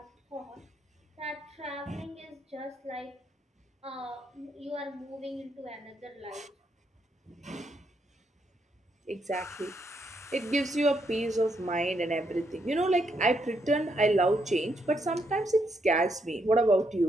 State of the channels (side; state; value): both; normal; correlation 0.77